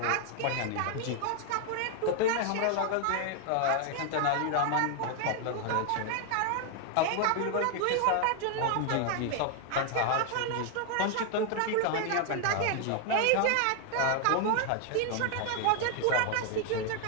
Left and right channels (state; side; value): different; both; correlation 0.00